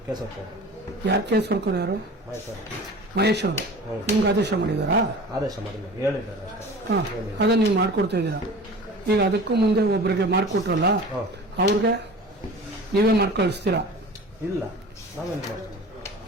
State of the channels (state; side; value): normal; both; correlation 0.39